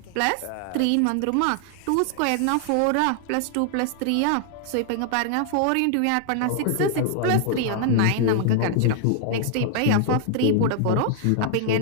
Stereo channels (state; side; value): different; both; correlation 0.00